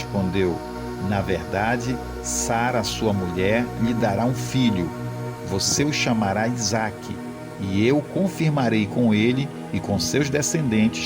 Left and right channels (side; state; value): both; identical; correlation 1.00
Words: na verdade, Sara, sua mulher, lhe dará um filho. Você o chamará Isaque, e eu confirmarei com ele e com seus